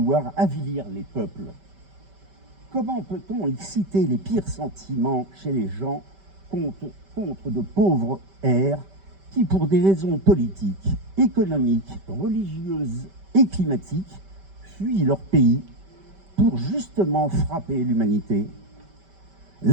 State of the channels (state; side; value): late; left; 5.1 ms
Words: avilir les peuples? Comment peut-on exciter les pires sentiments chez les gens contre de pauvres airs qui, pour des raisons politiques, économiques, religieuses et climatiques, fuient leur pays pour justement frapper l'humanité?